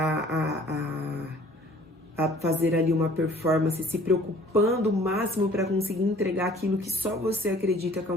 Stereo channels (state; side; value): normal; both; correlation 0.52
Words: a fazer ali uma performance, se preocupando o máximo para conseguir entregar aquilo que só você acredita que é